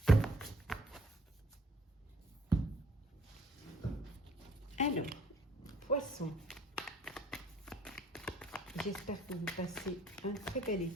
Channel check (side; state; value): both; normal; correlation 0.60